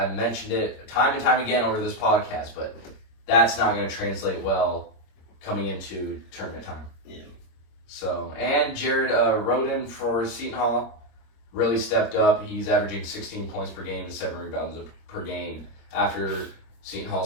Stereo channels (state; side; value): late; right; 26 ms